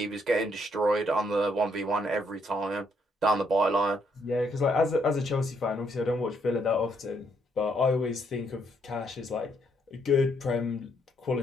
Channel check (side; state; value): both; normal; correlation 0.72